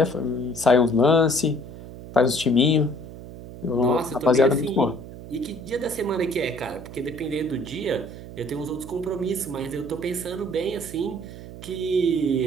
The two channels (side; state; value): right; noise; hum, 14 dB below the sound